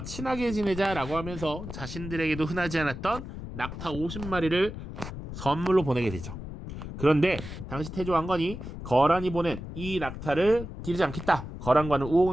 친하게 지내자라고 하면서 자신들에게도 흔하지 않았던 낙타 50마리를 선물로 보내게 되죠. 그런데 당시 태조 왕건이 거란이 보낸 이 낙타를 기르지 않겠다. 거란과는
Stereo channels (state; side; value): noise; left; rumble, 9 dB below the sound